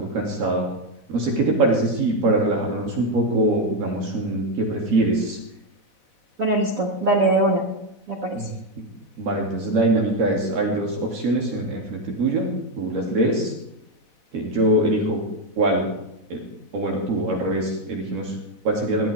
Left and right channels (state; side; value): late; left; 4.0 ms